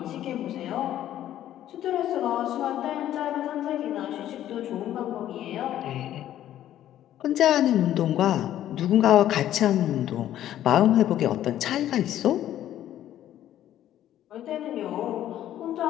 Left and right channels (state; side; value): quieter; right; 12.1 dB